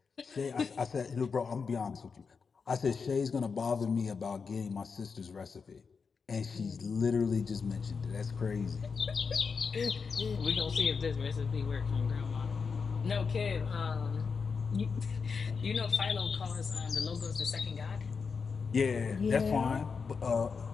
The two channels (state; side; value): quieter; right; 5.4 dB